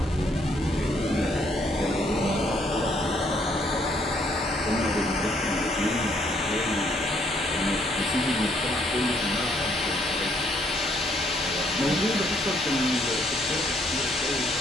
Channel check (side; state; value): both; normal; correlation 0.68